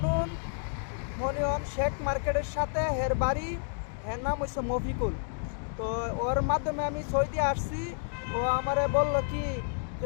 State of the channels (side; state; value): right; silent; digital silence